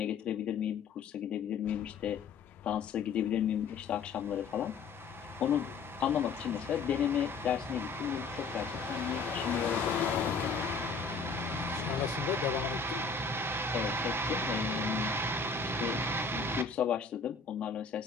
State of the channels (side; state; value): right; quieter; 4.9 dB